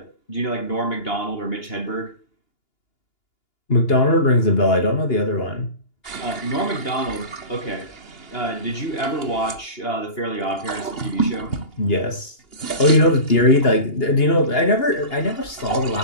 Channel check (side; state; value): right; late; 2.8 ms